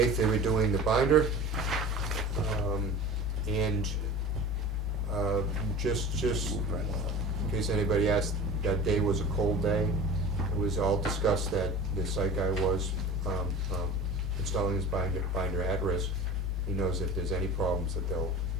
they were doing the binder, and just in case anybody asked, that day was a cold day. It was all discussed that the site guy was installing his binder at risk, he knows if there's any problems that they'll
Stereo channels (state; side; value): normal; both; correlation 0.36